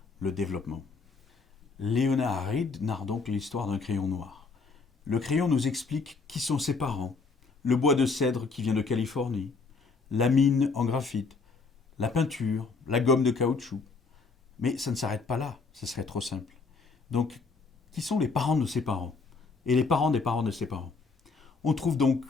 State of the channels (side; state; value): right; quieter; 4.4 dB